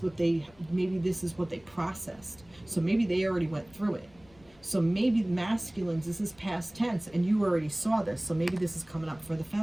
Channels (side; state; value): left; noise; rumble, 28 dB below the sound